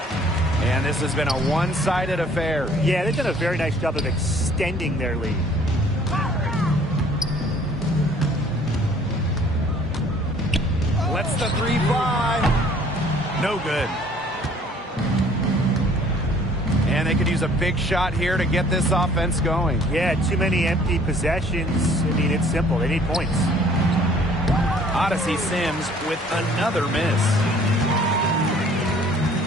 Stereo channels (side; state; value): both; normal; correlation 0.56